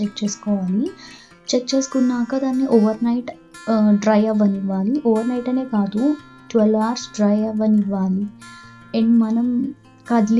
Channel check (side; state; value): both; identical; correlation 1.00